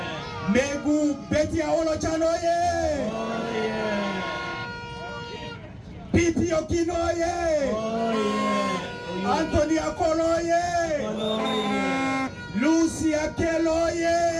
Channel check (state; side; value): identical; both; correlation 1.00